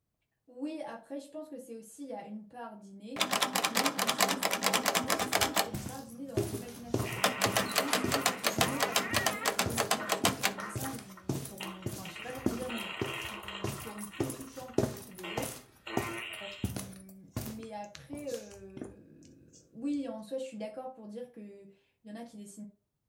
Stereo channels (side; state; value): both; identical; correlation 1.00